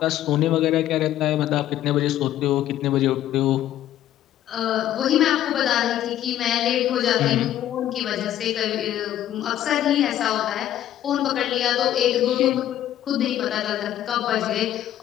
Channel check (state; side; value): quieter; right; 12.2 dB